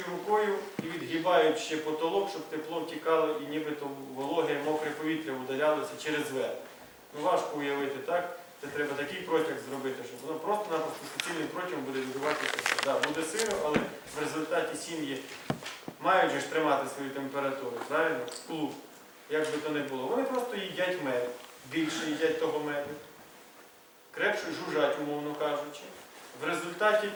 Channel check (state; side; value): identical; both; correlation 1.00